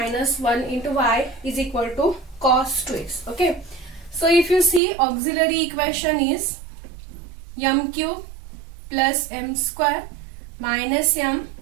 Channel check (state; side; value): drops out; left; at 4.8 s